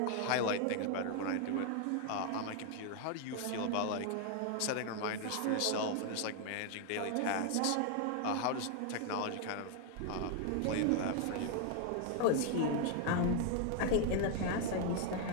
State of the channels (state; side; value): different; both; correlation 0.00